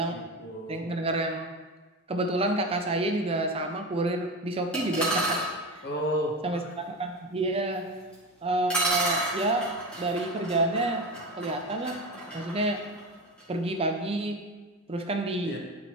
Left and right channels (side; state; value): both; normal; correlation 0.23